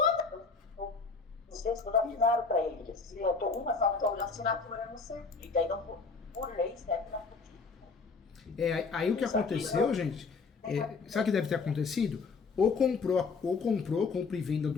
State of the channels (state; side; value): quieter; right; 4.7 dB